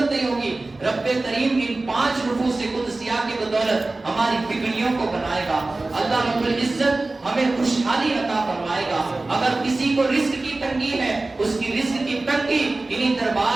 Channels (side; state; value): left; quieter; 3.1 dB